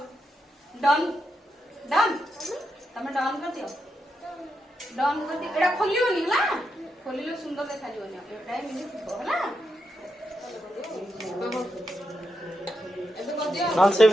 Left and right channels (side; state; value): both; normal; correlation 0.84